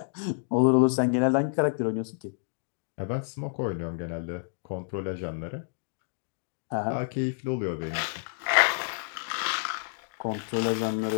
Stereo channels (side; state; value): right; silent; digital silence